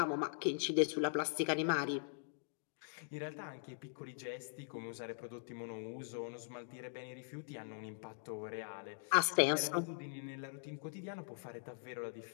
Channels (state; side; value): silent; right; digital silence